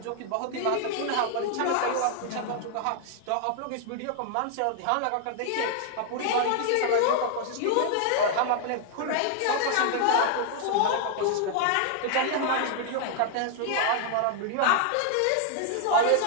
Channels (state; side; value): different; both; correlation -0.01